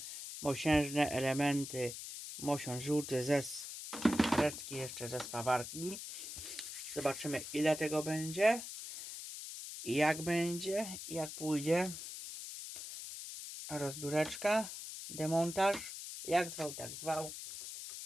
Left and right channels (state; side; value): noise; left; hiss, 9 dB below the sound